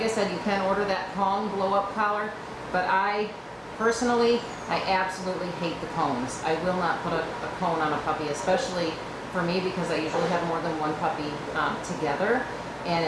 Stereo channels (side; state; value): both; identical; correlation 1.00